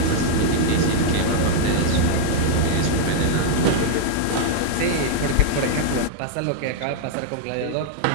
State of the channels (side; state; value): both; different; correlation -0.01